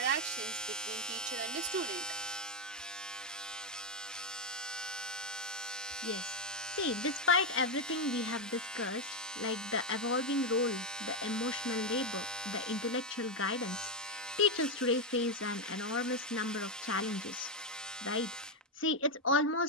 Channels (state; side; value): normal; both; correlation 0.05